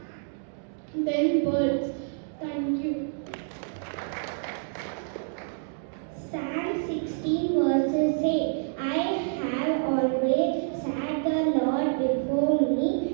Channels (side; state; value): left; silent; digital silence